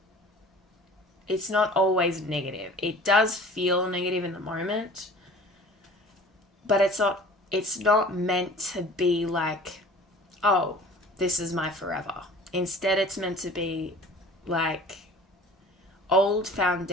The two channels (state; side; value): normal; both; correlation 0.45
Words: it's not always negative. It does feel negative in the moment, but it's not meant to be like, oh, this is my forever. Instead, it's meant to be like old